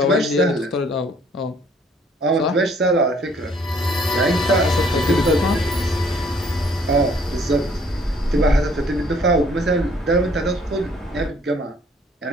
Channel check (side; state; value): both; normal; correlation 0.61